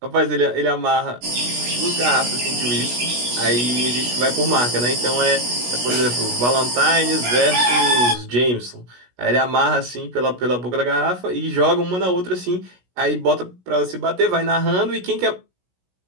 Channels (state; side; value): late; left; 16 ms